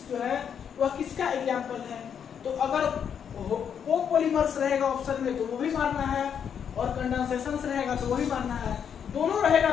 जो है वह किसका एग्जांपल है। तो अगर कोपॉलीमर्स रहेगा ऑप्शन में तो वो भी मारना है, और कंडेंसेशन रहेगा तो वो भी मारना है, दोनों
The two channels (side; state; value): right; quieter; 7.9 dB